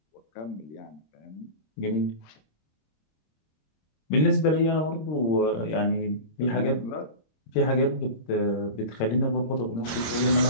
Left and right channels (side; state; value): right; late; 26 ms